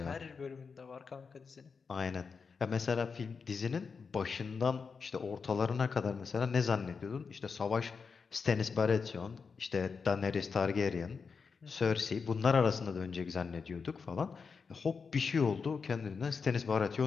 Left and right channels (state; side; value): quieter; right; 5.4 dB